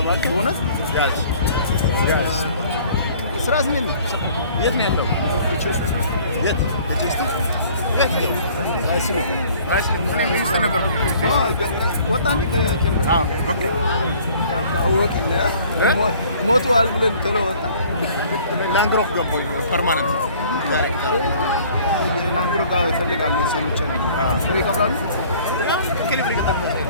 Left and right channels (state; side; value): inverted; both; correlation -0.53